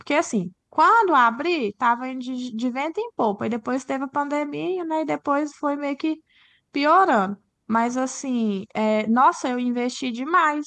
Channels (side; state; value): both; identical; correlation 1.00